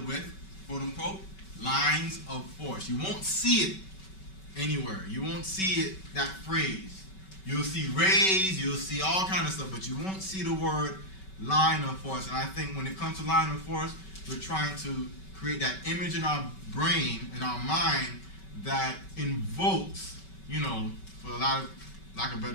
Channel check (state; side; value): late; right; 5.2 ms